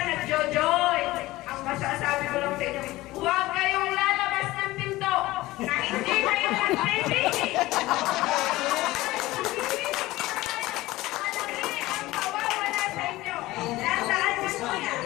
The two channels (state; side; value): quieter; right; 18.3 dB